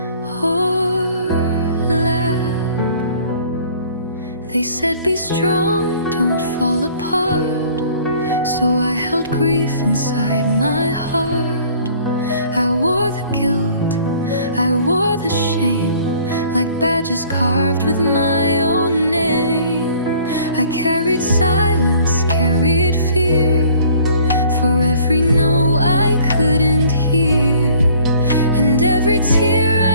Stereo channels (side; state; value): both; inverted; correlation -0.54